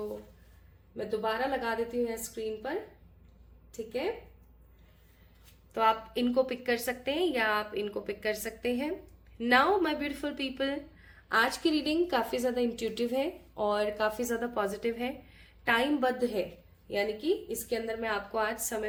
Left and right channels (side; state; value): both; identical; correlation 1.00